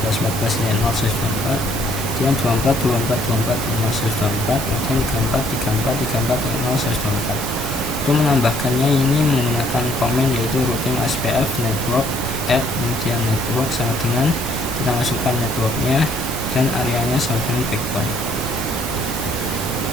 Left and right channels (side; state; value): right; noise; hiss, 10 dB below the sound